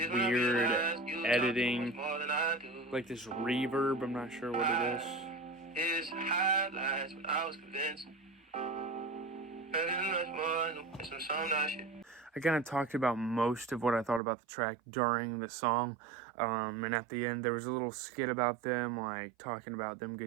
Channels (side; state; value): left; drops out; at 14.2 s